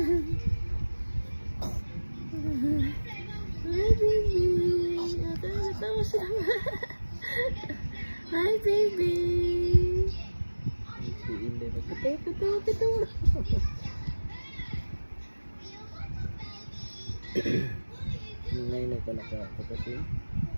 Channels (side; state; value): both; inverted; correlation -1.00